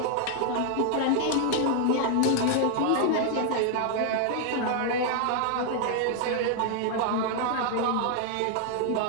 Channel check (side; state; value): both; different; correlation 0.00